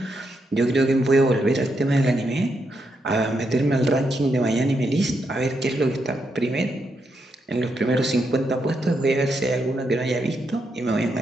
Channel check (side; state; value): both; normal; correlation 0.81